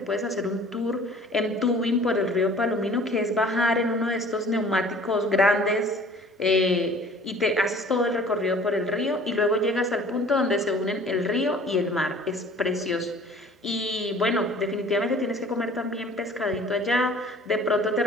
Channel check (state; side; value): normal; both; correlation 0.49